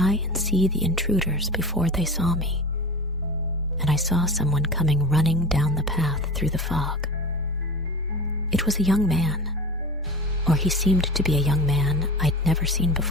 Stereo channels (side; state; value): both; normal; correlation 0.32